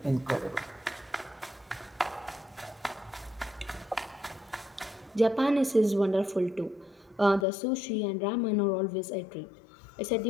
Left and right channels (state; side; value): drops out; right; at 7.5 s